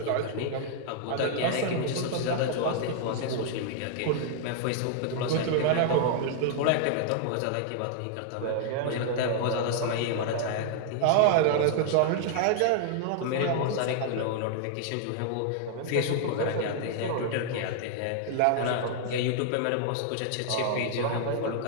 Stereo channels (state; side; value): different; both; correlation -0.01